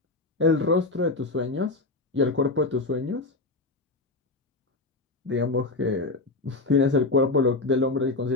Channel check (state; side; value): quieter; right; 3.2 dB